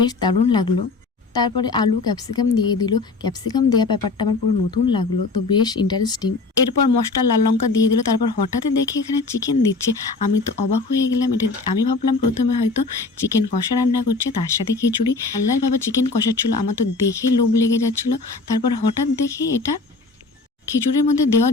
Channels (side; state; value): right; quieter; 3.8 dB